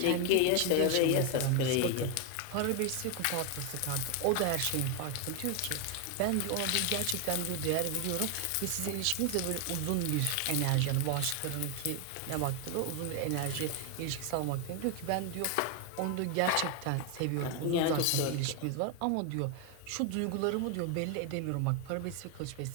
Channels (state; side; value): different; both; correlation 0.01